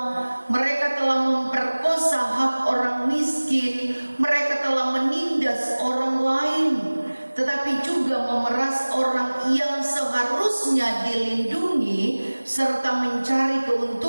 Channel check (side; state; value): both; inverted; correlation -1.00